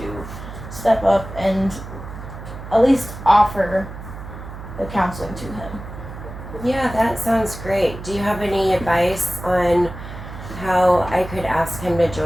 step up and at least offer the counseling to him. Yeah, that sounds great. Do you have any advice on how I could ask him to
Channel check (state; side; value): noise; right; hum, 12 dB below the sound